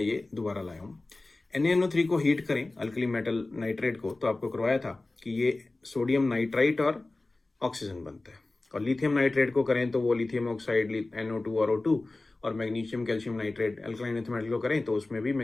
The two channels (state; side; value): quieter; right; 3.1 dB